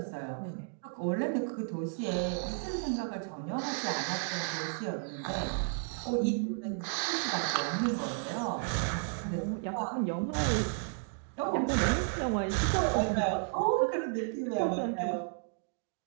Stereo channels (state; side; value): silent; left; 56 dB below the other